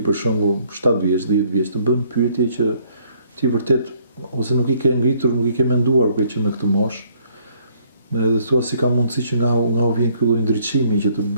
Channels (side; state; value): both; inverted; correlation -0.65